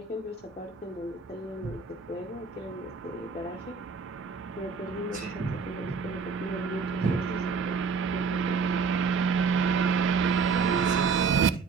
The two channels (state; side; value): quieter; left; 5.1 dB